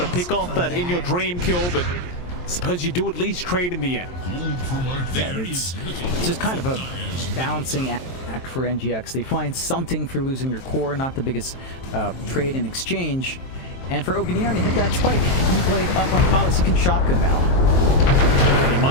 pick off that In Your Dream kill, but I suppose you do at least trade in the end. Yeah, it's just kind of a balancing act for NGX. They find something for losing their core, not the biggest trade in exchange. And for ob.neon to hit that spike, E-Blade up on Palos, he can shotgun now. And he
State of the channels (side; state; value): right; late; 23 ms